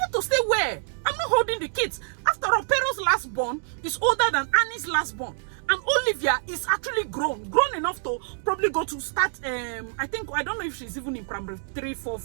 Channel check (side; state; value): left; silent; digital silence